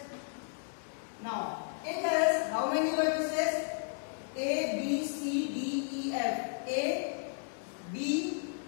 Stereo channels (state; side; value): silent; right; digital silence